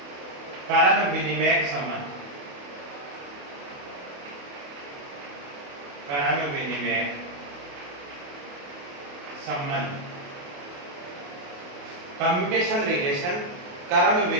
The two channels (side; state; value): left; late; 28 ms